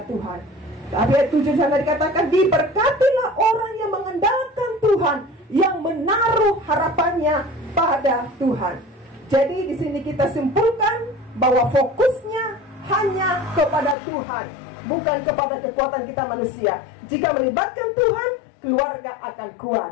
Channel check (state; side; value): drops out; right; at 14.0 s